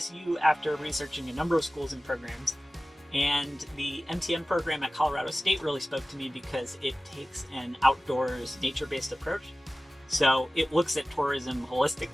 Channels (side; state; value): both; normal; correlation 0.96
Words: after researching a number of schools and programs, and the MTM program at Colorado State really spoke to me because it takes an outdoors, nature-based approach. So it looks at tourism